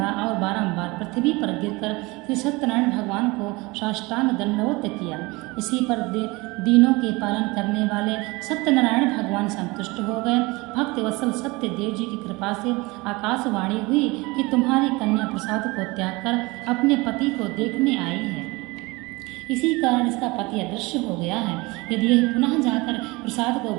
और बारंबार पृथ्वी पर गिरकर श्री सत्यनारायण भगवान को साष्टांग दंडवत किया। इसी पर दीनों के पालन करने वाले सत्यनारायण भगवान संतुष्ट हो गए। भक्त वत्सल सत्य देव जी की कृपा से आकाशवाणी हुई कि तुम्हारी कन्या प्रसाद को त्याग कर अपने पति को देखने आई है। इसी कारण इसका पति अदृश्य हो गया है। यदि यह पुनः जाकर प्रसाद को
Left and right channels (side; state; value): left; quieter; 23.7 dB